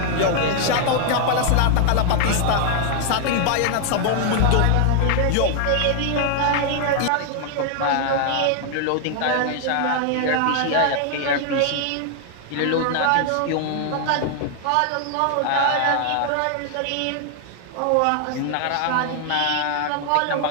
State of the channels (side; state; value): both; different; correlation 0.00